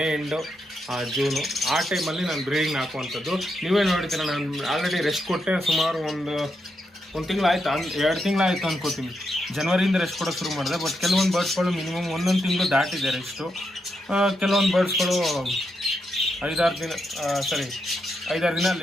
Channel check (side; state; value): both; normal; correlation 0.83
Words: ಎಂಡು ಜೂನು, ಆ ಟೈಮಲ್ಲಿ ನಾನು ಬ್ರೀಡಿಂಗ್ ಹಾಕುವಂಥದ್ದು. ನೀವೇ ನೋಡ್ತೀರ, ನಾನು ಆಲ್ರೆಡಿ ರೆಸ್ಟ್ ಕೊಟ್ಟೆ. ಸುಮಾರು ಒಂದು ತಿಂಗಳಾಯ್ತು, 2 ತಿಂಗಳಾಯ್ತು ಅನ್ಕೋತೀನಿ. ಜನವರಿಯಿಂದ ರೆಸ್ಟ್ ಕೊಡೋಕೆ ಶುರು ಮಾಡಿದೆ. ಬಟ್ ಕೆಲವೊಂದು ಬರ್ಡ್ಸ್ಗಳು ಮಿನಿಮಮ್ 1 ತಿಂಗಳು ದಾಟಿದೆ ರೆಸ್ಟು. ಕೆಲವೊಂದು ಬರ್ಡ್ಸ್ಗಳು 5-6 ದಿನ